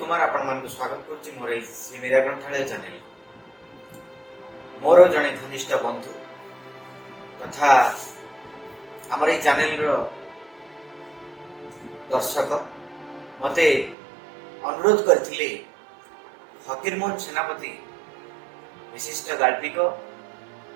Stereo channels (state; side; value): drops out; left; at 14.0 s